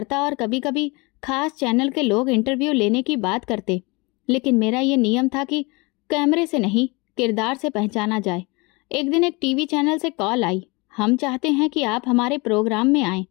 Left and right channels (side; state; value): right; quieter; 26.6 dB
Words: और कभी कभी खास चैनल के लोग इंटरव्यू लेने की बात करते, लेकिन मेरा ये नियम था कि कैमरे से नहीं, किरदार से पहचाना जाए। एक दिन एक टीवी चैनल से कॉल आई, हम चाहते हैं कि आप हमारे प्रोग्राम में आएं,